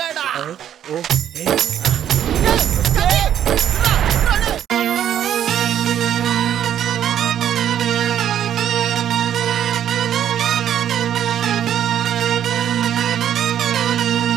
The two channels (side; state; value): left; quieter; 10.1 dB